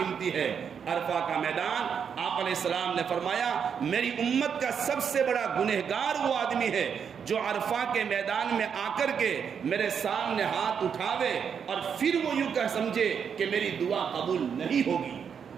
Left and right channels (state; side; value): quieter; left; 7.2 dB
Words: ہے، عرفہ کا میدان۔ آپ علیہ السلام نے فرمایا میری امت کا سب سے بڑا گنہگار وہ آدمی ہے جو عرفہ کے میدان میں آ کر کے میرے سامنے ہاتھ اٹھاوے اور پھر وہ یوں کہ سمجھے کہ میری دعا قبول نہیں ہوگی۔